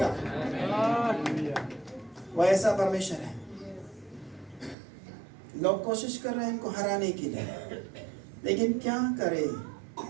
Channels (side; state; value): left; drops out; at 4.8 s